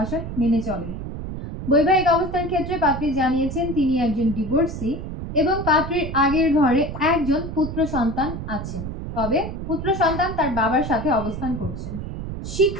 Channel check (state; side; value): noise; right; rumble, 7 dB below the sound